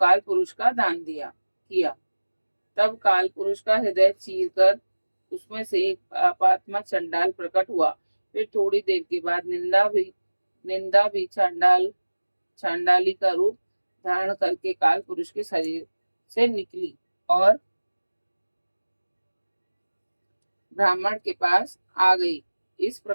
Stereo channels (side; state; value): both; inverted; correlation -1.00